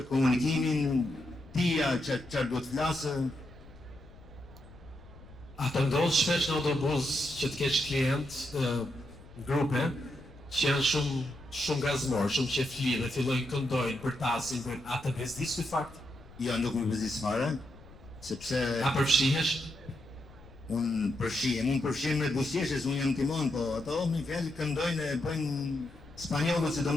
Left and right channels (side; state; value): left; noise; rumble, 20 dB below the sound